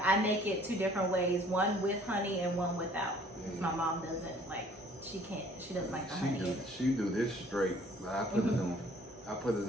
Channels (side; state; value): both; normal; correlation 0.56